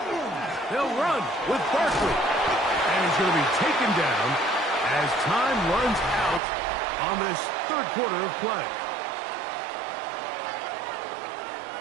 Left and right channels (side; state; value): left; drops out; at 6.4 s